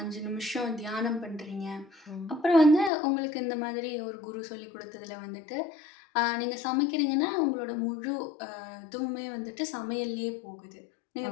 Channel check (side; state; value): right; drops out; at 2.9 s